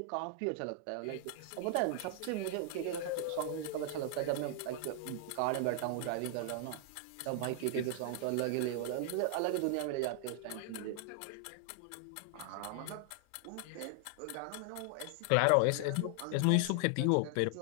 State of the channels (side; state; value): both; different; correlation 0.00